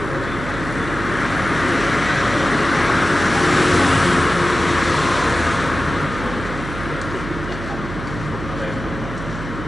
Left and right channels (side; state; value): right; noise; hum, 9 dB below the sound